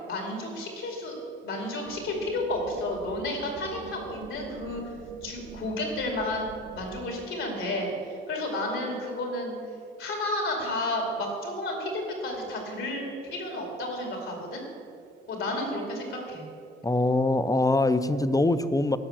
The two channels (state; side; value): normal; both; correlation 0.48